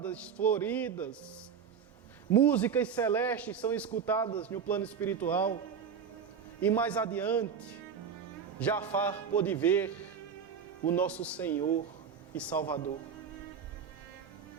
floridas. Músicas celestes são escutadas no plano espiritual. E mais adiante, Jafar pôde ver o nosso Senhor e Salvador.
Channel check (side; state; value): left; quieter; 7.0 dB